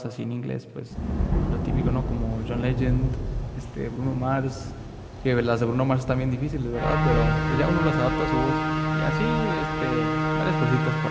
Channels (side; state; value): both; identical; correlation 1.00